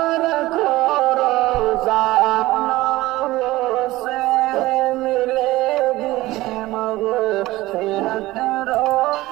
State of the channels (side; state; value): left; quieter; 18.1 dB